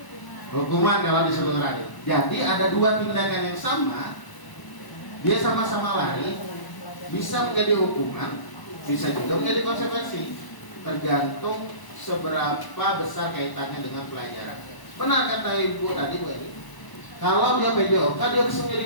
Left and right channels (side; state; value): right; late; 1.0 ms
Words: kalau disuruh lari. Jadi ada 2 tindakan yang sama. Dia sama-sama lari, bisa menjadi hukuman, bisa juga menjadi konsekuensi, tergantung seberapa besar kaitannya dengan pelajaran. Benar kata Ibu tadi, Bu Eli. Kalau dia PJOK, dia bisa menjadi